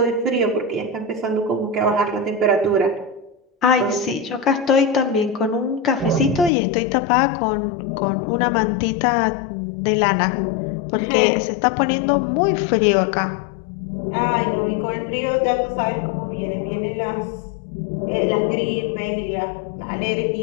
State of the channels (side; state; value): right; drops out; at 6.5 s